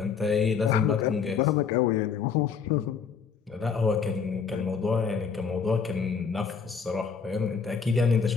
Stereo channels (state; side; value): quieter; right; 6.1 dB